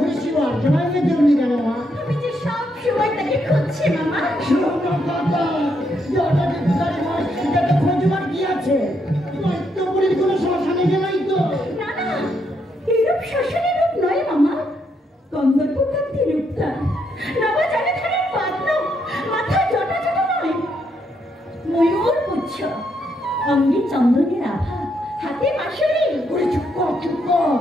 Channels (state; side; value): normal; both; correlation 0.77